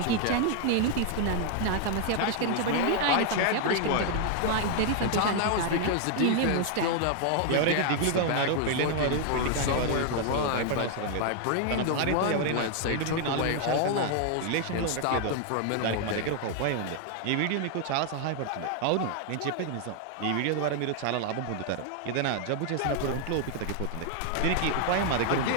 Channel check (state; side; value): different; both; correlation 0.00